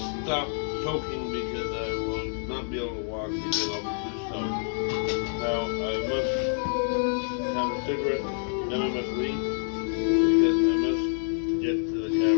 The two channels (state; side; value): silent; right; digital silence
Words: stop choking because I will not be able to walk because I'll be too stoned. Now I must have a cigarette, then I must leave because I must get to the